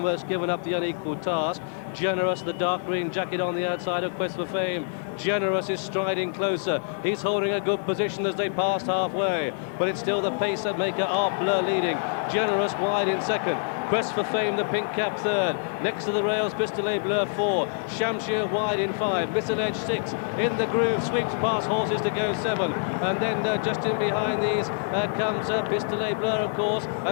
given up the unequal task. Generous, the dark green jacket on the outside of Quest for Fame. Generous is striding closer. He's holding a good position as they pass halfway, but it's still the pace that maker Art Bleu leading. Generous wide in second. Quest for Fame, the pink cap third. Next to the rails, Pistolet Bleu 4. Shamshir wide in 5. Misalledge 6. In the groove, sweeps past horses to go 7. And then just in behind these comes Pistolet Bleu, of course,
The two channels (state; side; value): silent; right; digital silence